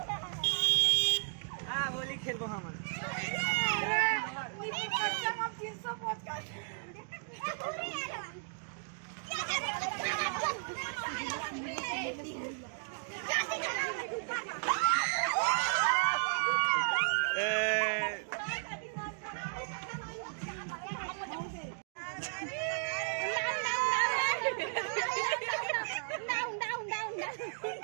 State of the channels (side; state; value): left; silent; digital silence